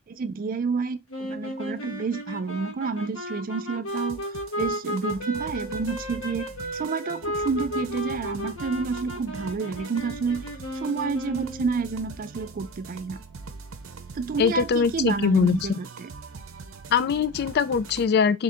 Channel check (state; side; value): normal; both; correlation 0.28